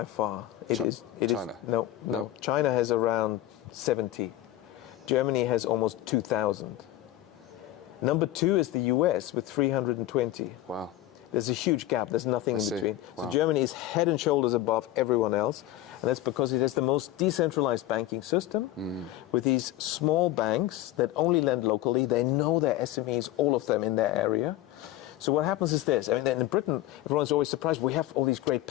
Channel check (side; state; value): right; quieter; 14.7 dB